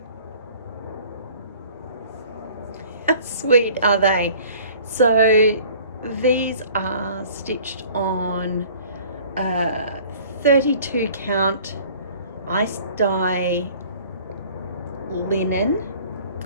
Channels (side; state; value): both; inverted; correlation -0.50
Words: How sweet are they? So these are stitched on 32 count ice dye linen